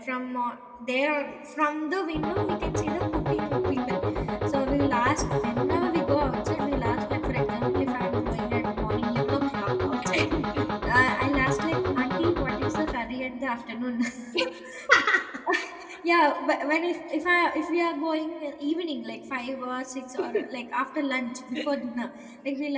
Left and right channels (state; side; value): identical; both; correlation 1.00